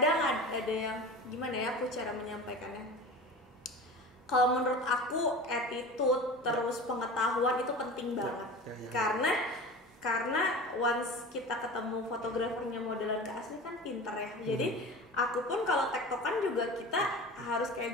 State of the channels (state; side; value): normal; both; correlation 0.34